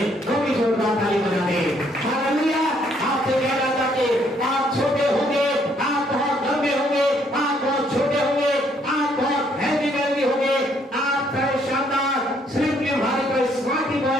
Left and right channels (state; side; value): normal; both; correlation 0.68